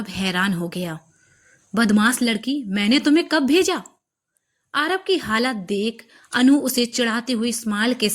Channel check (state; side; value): identical; both; correlation 1.00